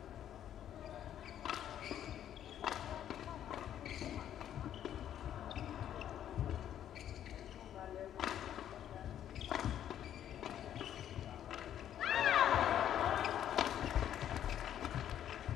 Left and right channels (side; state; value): right; quieter; 10.6 dB